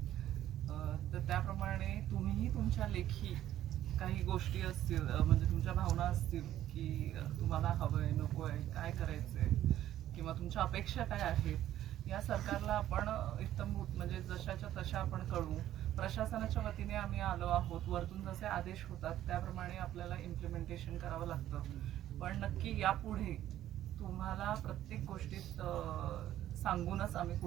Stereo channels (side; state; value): left; quieter; 12.6 dB